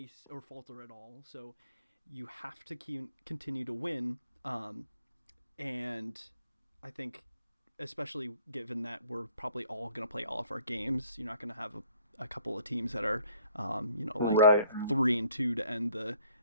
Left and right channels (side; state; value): both; inverted; correlation -0.59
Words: falter at all. So you have to continue to win, and I think, especially given that we're probably all going to play all of our games, you're not going to have a couple of teams that are, like Right. 3-2 to end